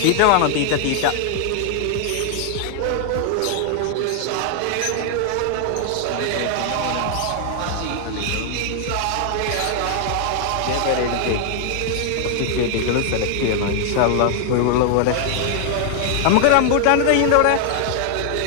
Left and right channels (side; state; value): both; different; correlation 0.00